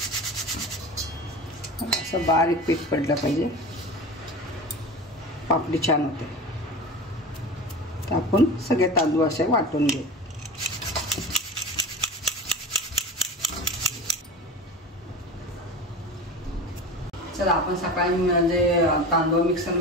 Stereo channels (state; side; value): normal; both; correlation 0.31